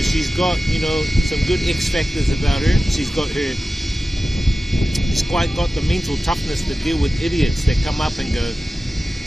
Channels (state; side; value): normal; both; correlation 0.95